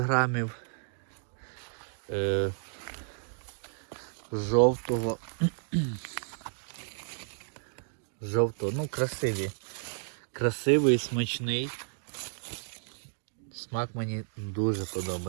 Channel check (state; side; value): silent; left; digital silence